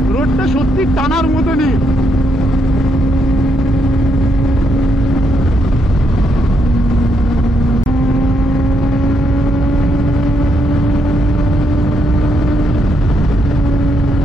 রোডটা সত্যি টানার মতনই।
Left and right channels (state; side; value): normal; both; correlation 0.77